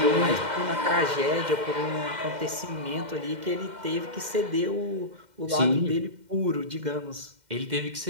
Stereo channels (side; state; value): left; late; 2.1 ms